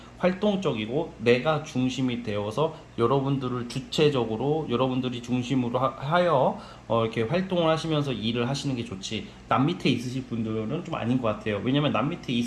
활동적이고 내가 중심이 되어서 여러분들을 주체적으로 여러분들이 중심으로 하여 이렇게 활동을 하시면서 일을 하시는 게 좋지. 남 밑에 있으실 분들은 좀 아닌 것 같아요. 왜냐면 남 밑에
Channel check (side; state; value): both; identical; correlation 1.00